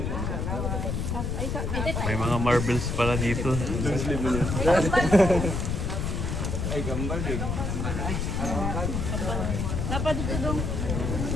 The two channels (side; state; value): left; noise; rumble, 1 dB below the sound